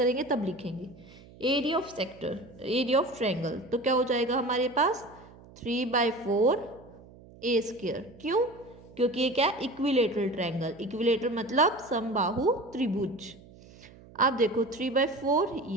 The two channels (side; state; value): right; noise; hum, 22 dB below the sound